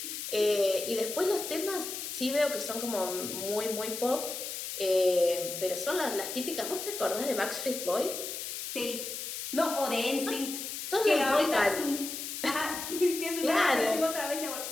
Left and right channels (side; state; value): left; noise; hiss, 6 dB below the sound